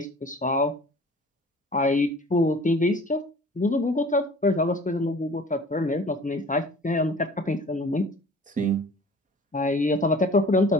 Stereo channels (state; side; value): normal; both; correlation 0.46